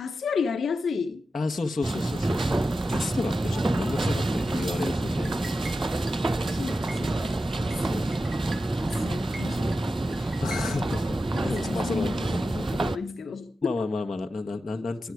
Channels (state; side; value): normal; both; correlation 0.91